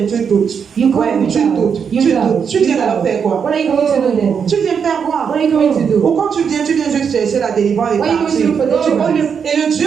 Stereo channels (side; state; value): left; quieter; 6.8 dB